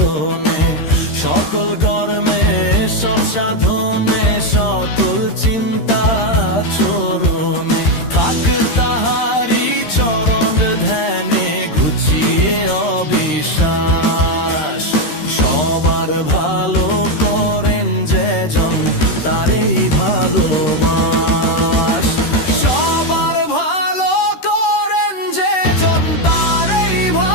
সকল কর্মে সব সাধনে সকল চিন্তা চরণে, থাক তাহারি চরণ ধ্যানে ঘুচিয়ে অবিশ্বাস। সবার ভালো করেন যে জন তারই ভালোবাস। সবার ভালো করেন যে জন তারই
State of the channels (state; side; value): late; right; 13 ms